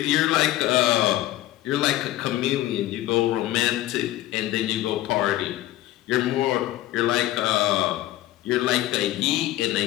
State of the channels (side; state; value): right; quieter; 15.0 dB